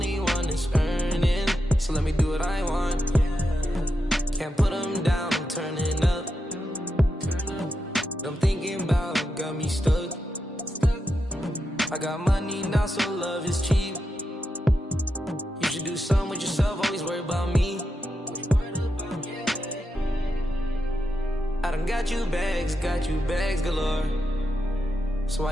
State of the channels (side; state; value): both; normal; correlation 0.87